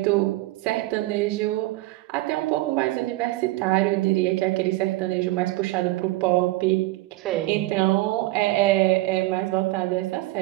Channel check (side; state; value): left; quieter; 19.3 dB